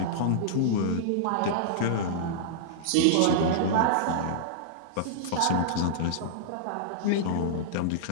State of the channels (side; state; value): both; different; correlation -0.02